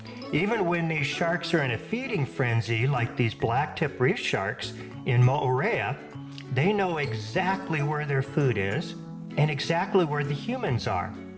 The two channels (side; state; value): both; identical; correlation 1.00